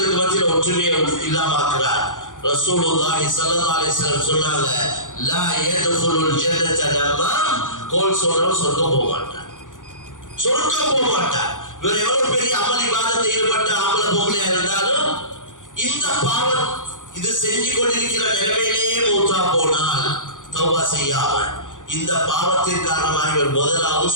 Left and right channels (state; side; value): late; right; 0.87 ms